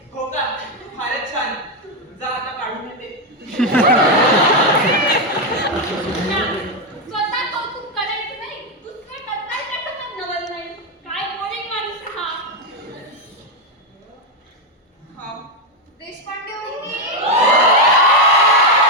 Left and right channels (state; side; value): normal; both; correlation 0.06